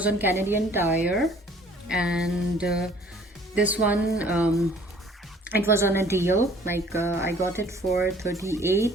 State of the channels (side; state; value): both; normal; correlation 0.55